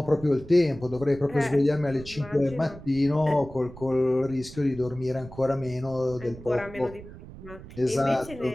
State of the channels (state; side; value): noise; right; rumble, 16 dB below the sound